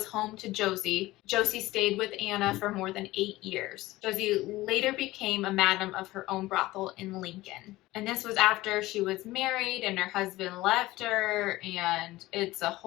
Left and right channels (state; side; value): quieter; right; 18.0 dB